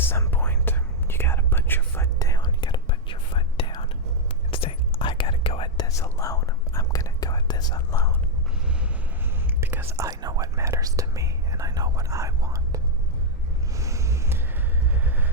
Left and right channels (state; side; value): normal; both; correlation -0.01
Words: point, you gotta put your foot down. You gotta put your foot down and say, I gotta go at this alone. I'm gonna go at this alone. Because I know what matters to me and I know what I want.